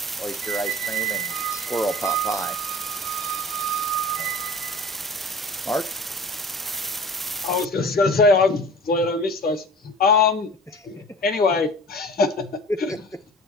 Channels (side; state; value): both; normal; correlation 0.42